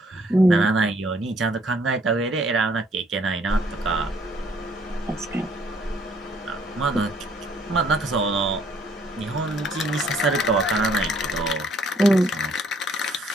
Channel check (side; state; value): both; normal; correlation 0.64